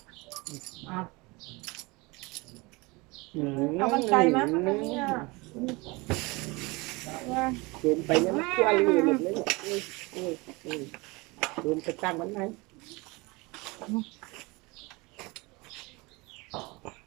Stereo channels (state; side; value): quieter; left; 25.0 dB